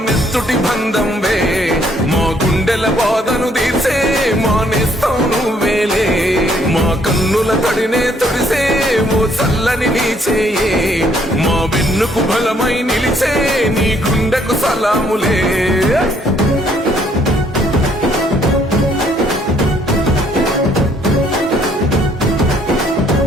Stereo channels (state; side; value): normal; both; correlation 0.66